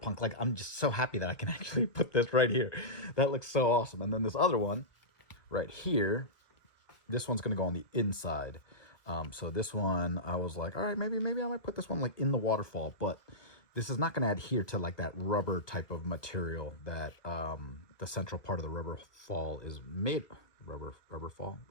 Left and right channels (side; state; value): right; late; 1.4 ms